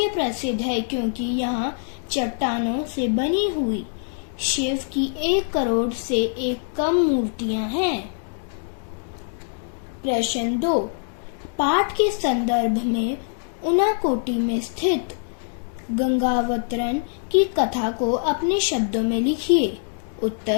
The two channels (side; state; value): right; silent; digital silence